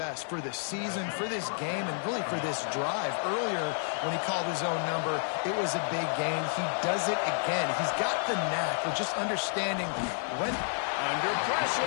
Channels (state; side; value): silent; right; digital silence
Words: for the season, for this game, and really for this drive. Earlier, when he called his own number, it was a big gain. He does it again. He's got the knack of just understanding when... Under